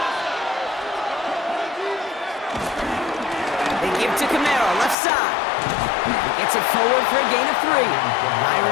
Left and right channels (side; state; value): right; drops out; at 5.0 s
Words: Give to Camaro, left side. Gets it forward for a gain of 3.